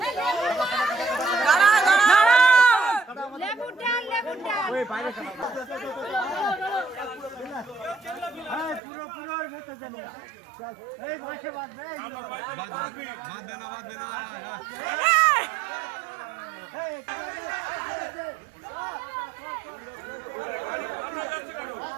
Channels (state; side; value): drops out; left; at 8.8 s